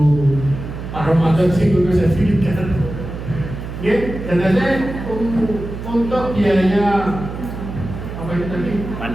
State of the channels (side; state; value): right; noise; hum, 8 dB below the sound